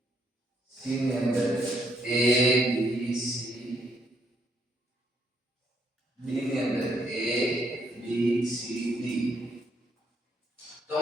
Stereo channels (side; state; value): both; normal; correlation 0.72